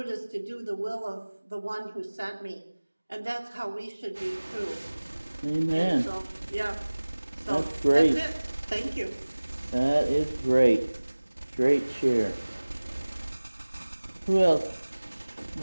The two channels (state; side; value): inverted; both; correlation -1.00